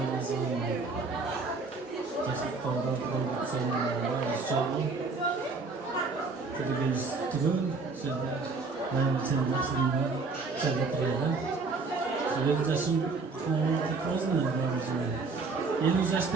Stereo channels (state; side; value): quieter; left; 4.1 dB